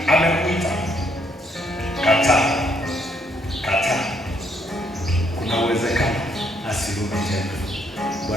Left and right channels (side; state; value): both; normal; correlation 0.71